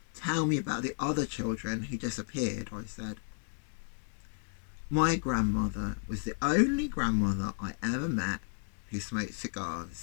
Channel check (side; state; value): right; silent; digital silence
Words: Tell me about the other children who disappeared, I said. My grandmother was the only grandmother I ever met who smoked